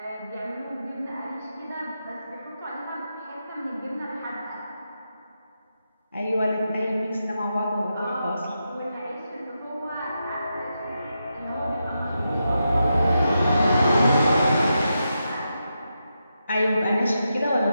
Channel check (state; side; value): inverted; both; correlation -0.86